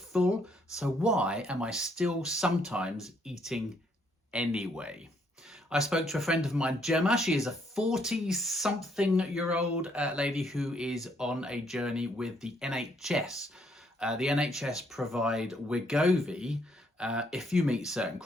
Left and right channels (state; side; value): normal; both; correlation 0.70